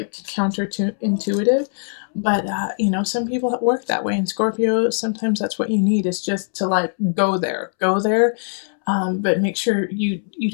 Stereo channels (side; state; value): right; silent; 65 dB below the other